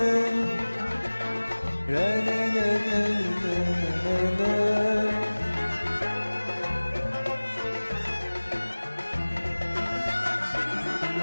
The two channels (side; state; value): both; inverted; correlation -1.00